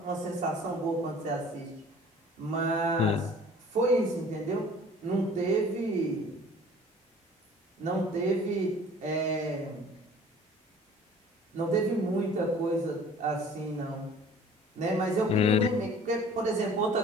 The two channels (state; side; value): normal; both; correlation 0.49